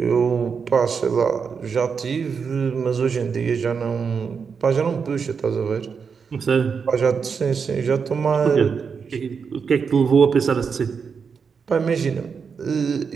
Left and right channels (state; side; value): quieter; left; 6.0 dB